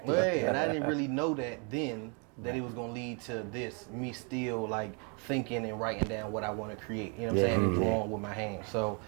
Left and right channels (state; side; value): quieter; left; 36.1 dB